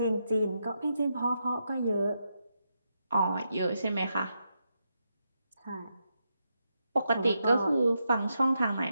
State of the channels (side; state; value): both; inverted; correlation -0.84